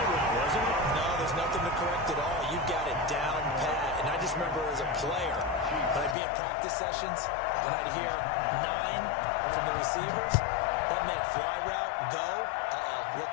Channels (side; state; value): right; drops out; at 6.2 s